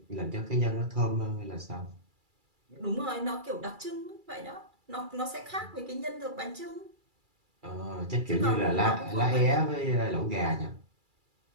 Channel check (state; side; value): late; left; 2.3 ms